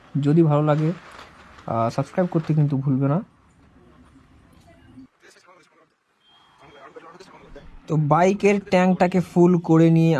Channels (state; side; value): identical; both; correlation 1.00